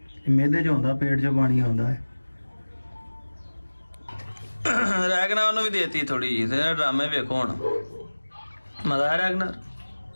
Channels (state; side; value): inverted; both; correlation -1.00